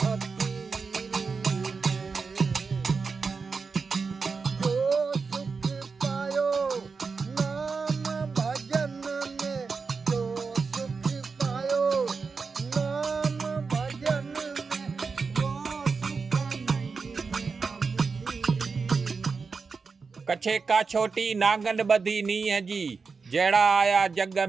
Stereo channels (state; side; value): quieter; left; 4.9 dB